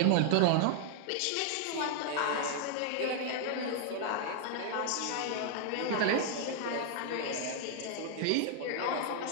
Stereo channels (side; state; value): both; different; correlation 0.00